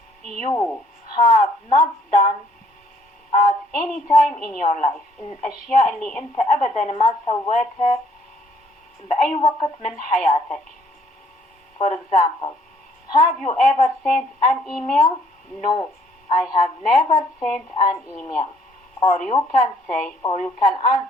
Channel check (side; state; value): both; normal; correlation 0.64